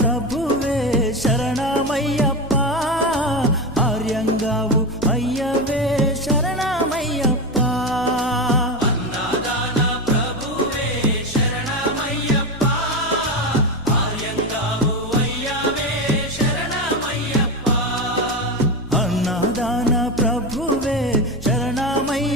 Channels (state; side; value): normal; both; correlation 0.17